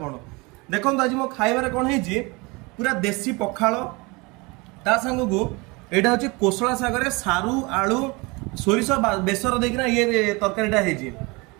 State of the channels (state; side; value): quieter; left; 26.2 dB